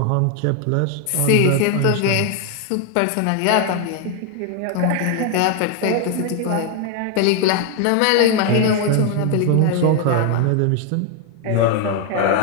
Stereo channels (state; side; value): different; both; correlation 0.01